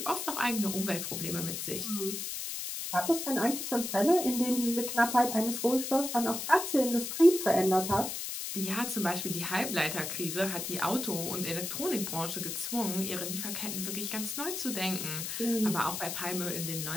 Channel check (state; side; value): noise; left; hiss, 5 dB below the sound